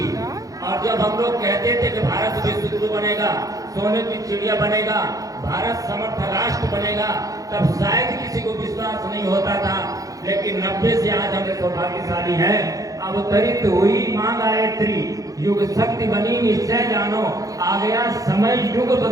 और जब हम लोग कहते थे कि भारत विश्व गुरु बनेगा, सोने की चिड़िया बनेगा, भारत समर्थ राष्ट्र बनेगा, तब शायद किसी को विश्वास नहीं होता था। लेकिन 90 से आज हम सौभाग्यशाली है। अवतरित हुई मां गायत्री, युग शक्ति बनी निश्चय जानो, आ गया समय युग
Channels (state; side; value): late; left; 0.17 ms